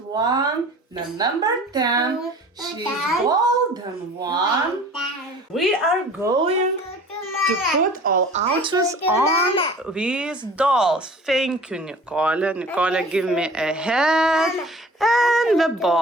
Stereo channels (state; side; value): normal; both; correlation 0.45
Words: the number 10, she's golden one. We are going to put all outfits on these dolls. Thank you, Nicole. Nicole, give me a head and the